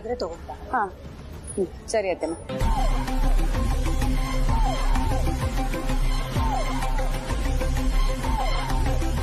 ತಗೊಂಡ. ಹಾ, ಸರಿ ಅತ್ತೆಮ್ಮ.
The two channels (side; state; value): both; identical; correlation 1.00